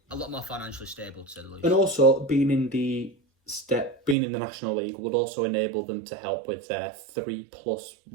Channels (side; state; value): left; drops out; at 4.2 s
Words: a lot more financially stable, to say the least. And also being in the National League would also enable them to help with their 3+.